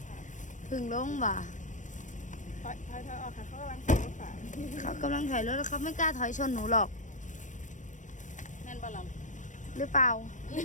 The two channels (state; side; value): late; right; 0.37 ms